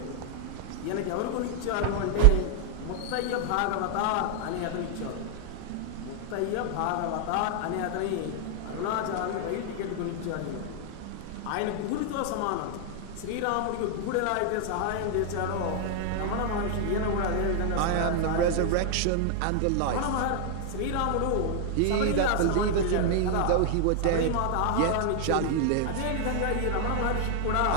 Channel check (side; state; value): both; different; correlation 0.00